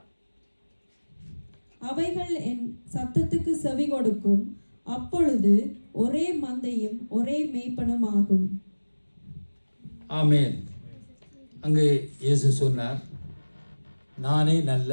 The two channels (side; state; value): both; inverted; correlation -1.00